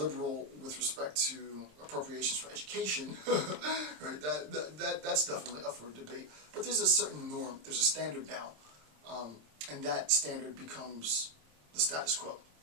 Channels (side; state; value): left; late; 26 ms